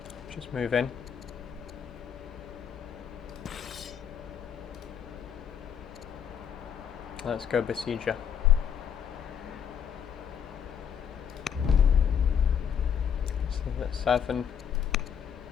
Just move in. Let's go besieger. So that's 7,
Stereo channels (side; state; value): right; quieter; 8.0 dB